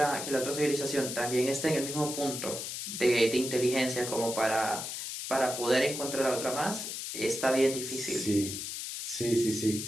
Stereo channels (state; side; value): noise; left; hiss, 6 dB below the sound